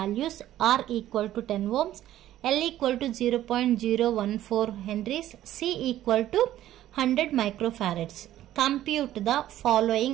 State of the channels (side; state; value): left; quieter; 13.2 dB